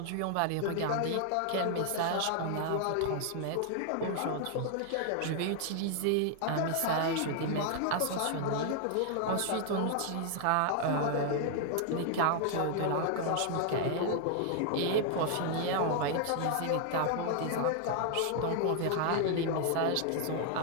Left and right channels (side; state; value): both; different; correlation 0.00